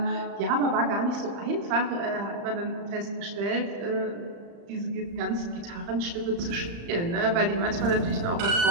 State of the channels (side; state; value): left; late; 35 ms